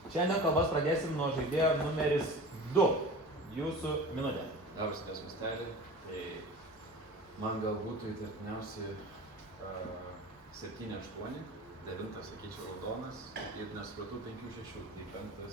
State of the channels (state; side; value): normal; both; correlation 0.36